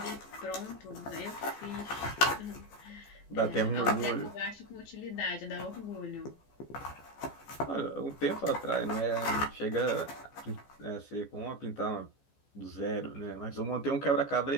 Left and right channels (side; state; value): right; late; 14 ms